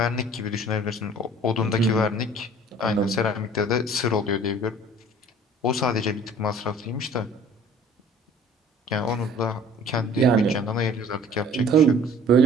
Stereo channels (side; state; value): both; normal; correlation 0.49